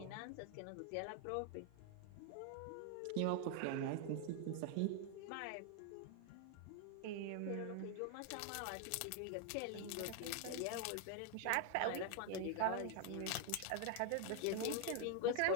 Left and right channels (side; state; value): both; different; correlation 0.00